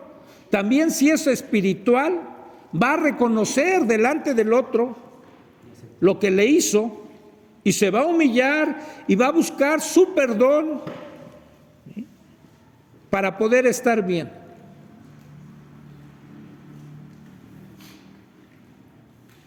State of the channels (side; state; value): both; identical; correlation 1.00